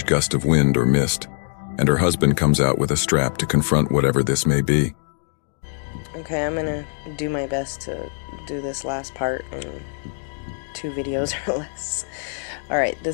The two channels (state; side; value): silent; right; digital silence